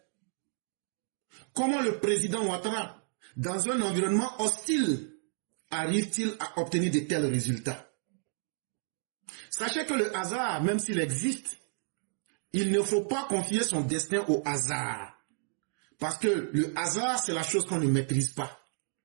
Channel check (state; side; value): silent; left; digital silence